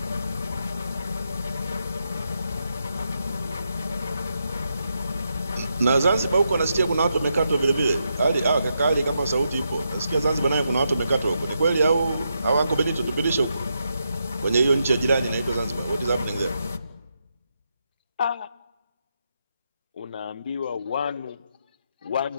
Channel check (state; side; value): inverted; both; correlation -0.83